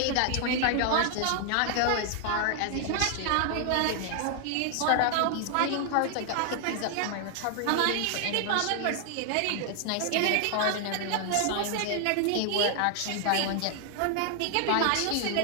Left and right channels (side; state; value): both; different; correlation 0.00